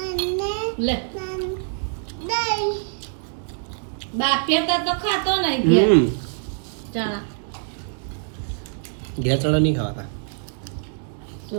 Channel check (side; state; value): left; silent; digital silence